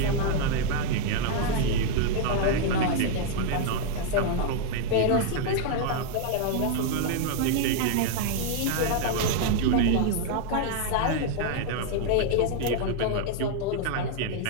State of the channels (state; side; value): different; both; correlation 0.00